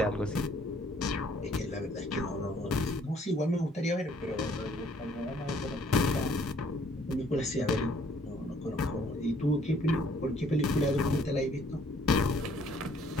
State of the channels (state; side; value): normal; both; correlation 0.62